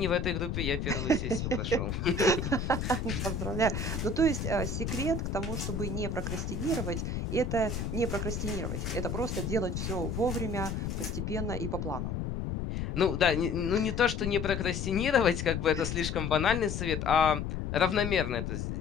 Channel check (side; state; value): left; noise; rumble, 3 dB below the sound